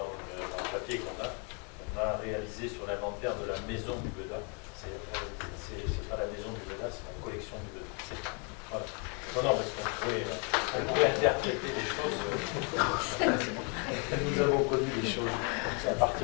le papier qu'on a réalisé sur l'inventaire de la maison du Beda. C'est pas la maison du Beda, c'est la collection du Beda. Voilà. Non, parce qu'on pourrait interpréter les choses. Nous avons connu des choses à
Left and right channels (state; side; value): quieter; right; 36.2 dB